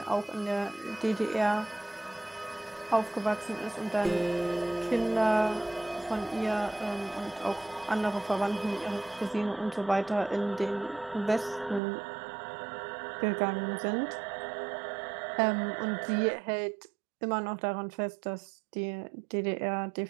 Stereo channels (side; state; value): left; drops out; at 11.8 s